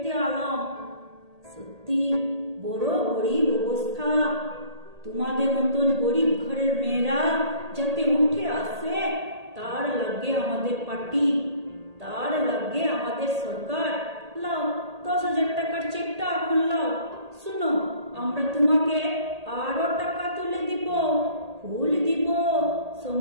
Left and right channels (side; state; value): left; late; 1.8 ms